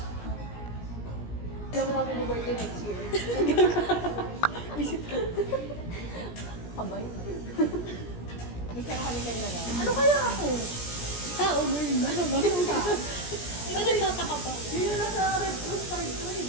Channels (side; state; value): right; late; 17 ms